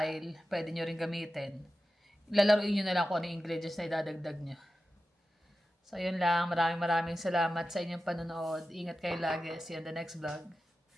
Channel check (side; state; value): both; normal; correlation 0.93